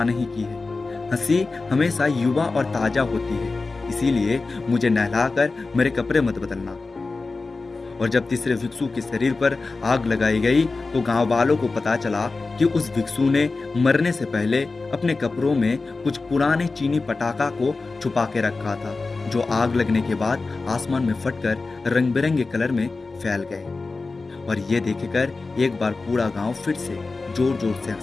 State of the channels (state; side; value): quieter; right; 3.8 dB